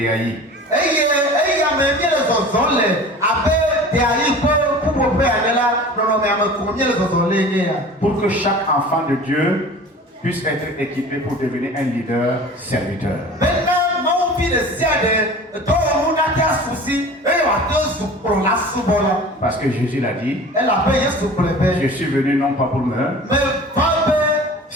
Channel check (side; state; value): both; normal; correlation 0.40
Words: Pour que chaque enfant de Dieu puisse être équipé pour devenir un leader serviteur. Parce que Jésus l'a dit, je suis venu non pas pour me